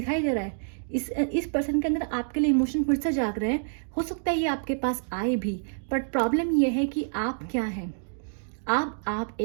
दे रहा है। इस पर्सन के अंदर आपके लिए इमोशन फिर से जाग रहे हैं। हो सकता है ये आपके पास आए भी, बट प्रॉब्लम ये है कि आप क्या हैं, आप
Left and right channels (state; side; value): silent; left; digital silence